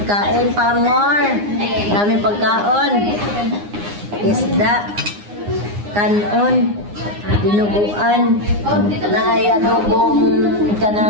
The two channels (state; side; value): late; left; 9.7 ms